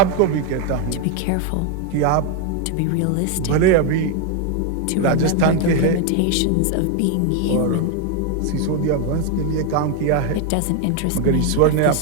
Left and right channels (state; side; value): different; both; correlation 0.01